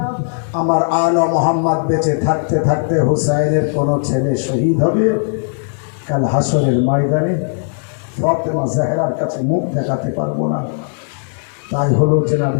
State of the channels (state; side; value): silent; right; digital silence